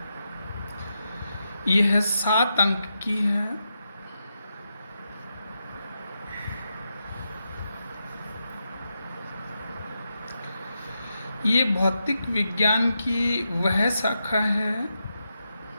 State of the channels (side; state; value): both; inverted; correlation -0.85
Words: यह 7 अंक की है। ये भौतिक विज्ञान की वह शाखा है